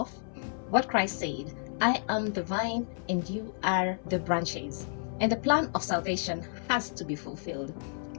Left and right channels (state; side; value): silent; right; 57 dB below the other